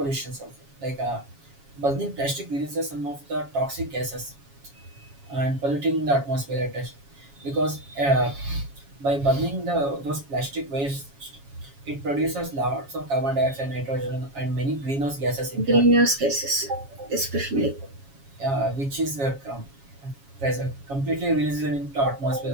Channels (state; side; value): late; left; 7.3 ms